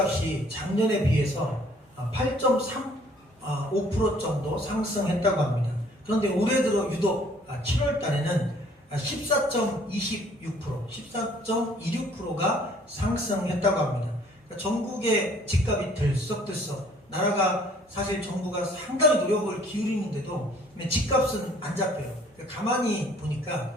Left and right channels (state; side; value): normal; both; correlation 0.58